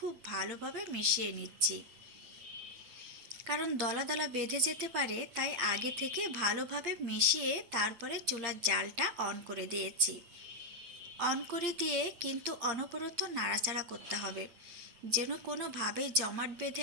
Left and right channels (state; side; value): late; left; 8.7 ms